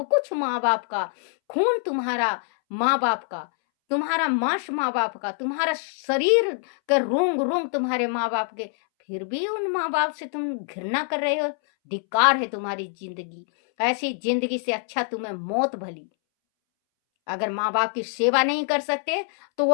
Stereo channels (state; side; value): silent; right; 62 dB below the other